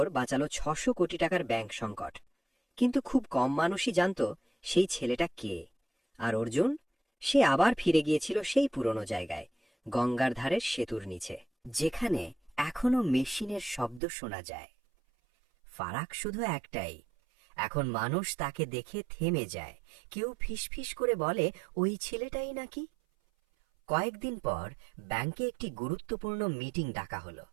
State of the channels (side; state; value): left; drops out; at 14.0 s